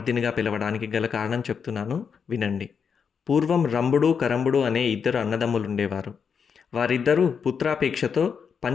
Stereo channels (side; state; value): right; quieter; 6.5 dB